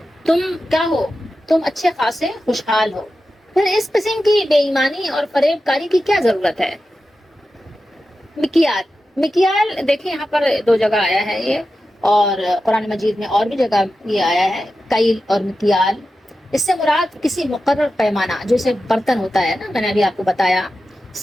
تم کیا ہو؟ تم اچھے خاصے خوشحال ہو، پھر اس قسم کی بے ایمانی اور فریب کاری کی کیا ضرورت ہے؟ مکیال دیکھیں یہاں پر دو جگہ آیا ہے یہ، اور قرآن مجید میں اور بھی جگہ یہ آیا ہے، کیل اور مکیال۔ اس سے مراد کسی مقرر پیمانہ، جیسے برتن ہوتا ہے نا، میں نے ابھی آپ کو بتایا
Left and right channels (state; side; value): normal; both; correlation 0.92